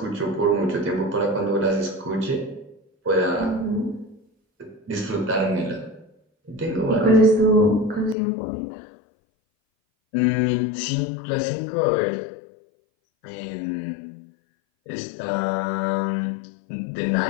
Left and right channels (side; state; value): right; drops out; at 8.2 s